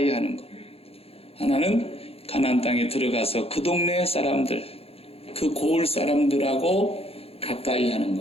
하는 것, 하나는 가나안 땅에 들어가서 그 동네 사람들, 그 고을 사람들하고 가까이 하는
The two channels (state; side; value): late; right; 0.28 ms